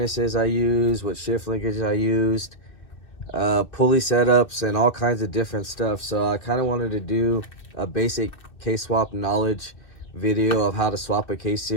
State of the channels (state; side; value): late; right; 2.6 ms